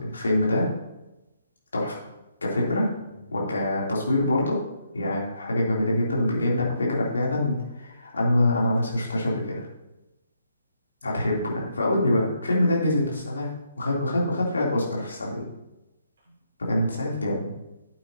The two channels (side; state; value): both; inverted; correlation -0.77